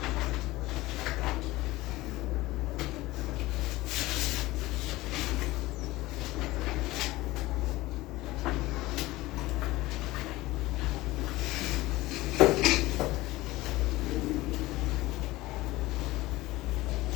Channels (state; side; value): quieter; right; 18.9 dB